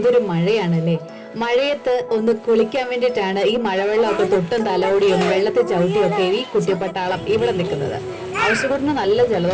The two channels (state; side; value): identical; both; correlation 1.00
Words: മഴയാണല്ലേ. മഴയത്ത് ഒന്ന് കുളിക്കാൻ വേണ്ടിയിട്ടാണ് ഈ മഴവെള്ളമൊക്കെ തൊട്ടും തലോടിയും വെള്ളത്തിൽ ചവിട്ടിയും ഒക്കെ ഈ കുട്ടിപ്പട്ടാളം ഇവിടെ നിൽക്കുന്നത്. ഔഷകുട്ടിന് നല്ല